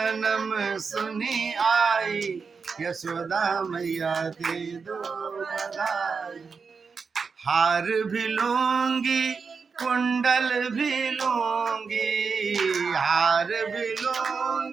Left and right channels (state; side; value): quieter; left; 5.3 dB